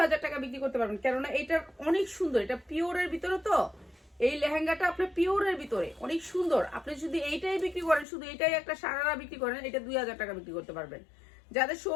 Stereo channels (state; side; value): drops out; right; at 8.1 s